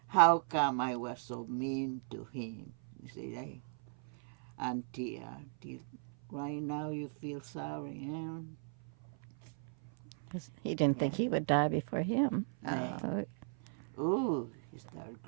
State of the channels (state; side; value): silent; left; 53 dB below the other